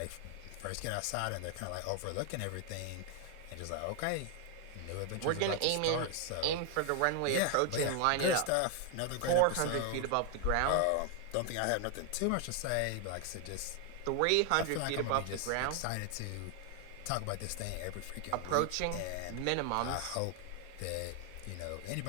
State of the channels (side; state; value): both; different; correlation 0.00